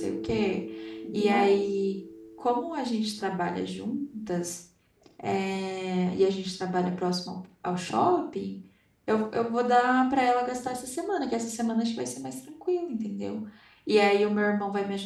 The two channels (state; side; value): identical; both; correlation 1.00